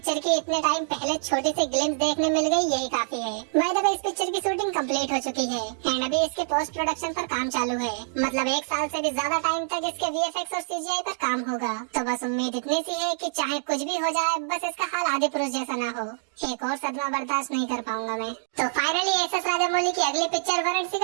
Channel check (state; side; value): silent; left; digital silence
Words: की इतने टाइम पहले छोटी सी ग्लिम्स देखने मिल गई, यही काफी है। बाय द वे, इस पिक्चर की शूटिंग कंप्लीट हो चुकी है एंड अभी इसके पोस्ट प्रोडक्शन पर काम चालू है, मतलब 1 साल से भी ज्यादा टाइम तक इसके VFX और CGI पर काम होगा। तो बस उम्मीद इतनी सी है कि चाहे कुछ भी हो जाए, बस इसका हाल आदि पुरुष जैसा ना हो। एक और सदमा बर्दाश्त नहीं कर पाऊंगा मैं। तो फाइनली एस.एस. राजामौली की अगली पिक्चर वाराणसी